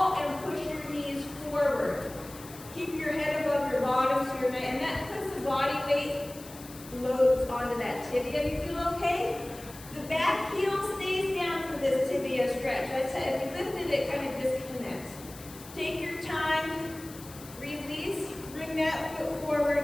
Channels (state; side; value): noise; left; hiss, 17 dB below the sound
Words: and push your knees forward. Keep your head above your bottom, so and that puts the body weight loads onto that tibia. You feel okay? The back heel stays down for this tibia stretch. I said, if you lifted it, kind of disconnects. Take your time, release, bring that foot